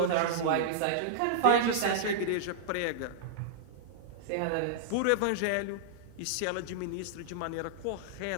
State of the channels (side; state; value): both; different; correlation -0.01